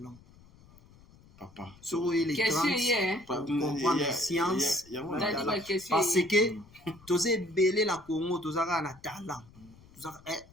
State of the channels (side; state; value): left; noise; rumble, 25 dB below the sound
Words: Papa. Sur les 30 pour comprendre science parce que tosé belé la Congo tozaka na talent.